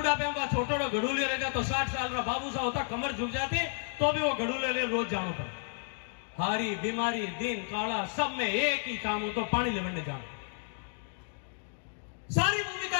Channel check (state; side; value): silent; right; 57 dB below the other